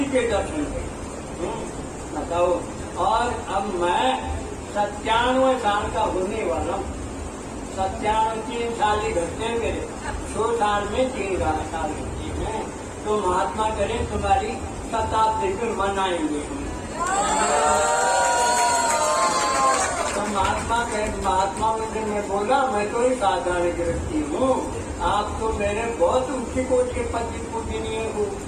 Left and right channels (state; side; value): identical; both; correlation 1.00